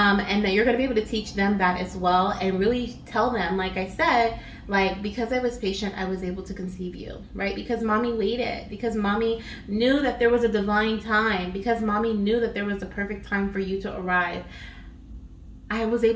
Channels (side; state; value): both; identical; correlation 1.00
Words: that you're going to be able to teach them that as well, and really tell them, like I said, like, because I was patient, I was able to conceive you, right? Because mommy waited, because mommy knew that there was a divine time, because mommy knew that there was a perfect time for you to arrive. I was